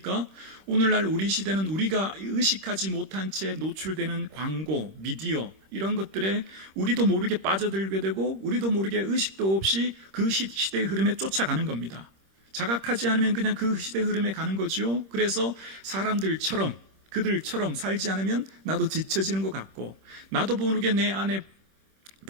오늘날 우리 시대는 우리가 의식하지 못한 채 노출되는 광고, 미디어 이런 것들에 우리도 모르게 빠져들게 되고 우리도 모르게 의식도 없이 그 시대의 흐름에 쫓아가는 겁니다. 자각하지 않으면 그냥 그 시대의 흐름에 가는 거죠. 그래서 사람들처럼 그들처럼 살지 않으면 나도 지쳐지는 것 같고 나도 모르게 내 안에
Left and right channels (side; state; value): left; late; 26 ms